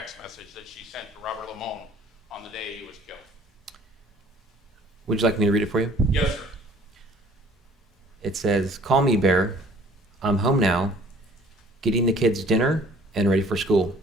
message that she sent to Robert Limon on the day he was killed? Would you like me to read it for you? Yes, sir. It says, Call me, Bear. I'm home now, getting the kids dinner and ready for school.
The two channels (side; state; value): both; normal; correlation 0.54